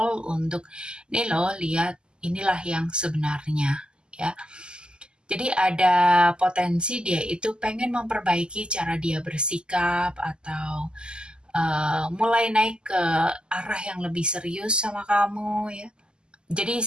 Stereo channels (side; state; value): left; late; 0.048 ms